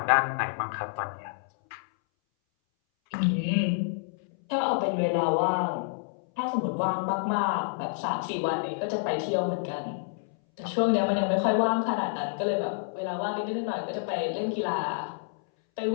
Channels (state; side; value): silent; right; 59 dB below the other